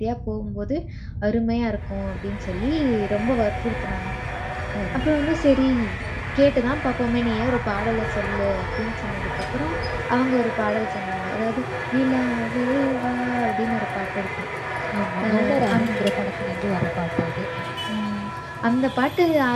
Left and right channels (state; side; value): identical; both; correlation 1.00